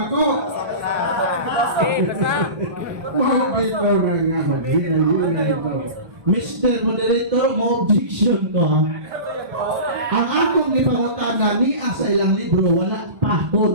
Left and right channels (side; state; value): left; late; 1.2 ms